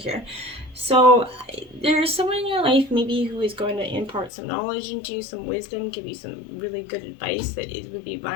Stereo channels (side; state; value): right; drops out; at 4.3 s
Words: So there's someone in your life maybe who is going to impart some knowledge into you, some wisdom, give you some really good advice that it would be